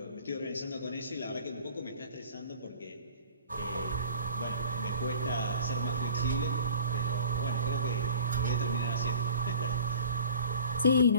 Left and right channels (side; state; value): both; inverted; correlation -0.45